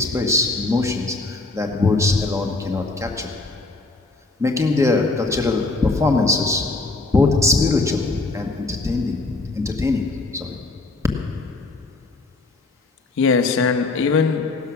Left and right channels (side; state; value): right; quieter; 3.4 dB